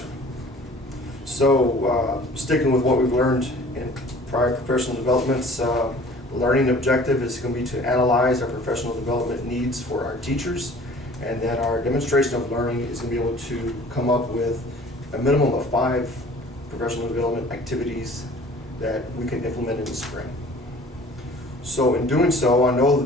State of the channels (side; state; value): both; normal; correlation 0.49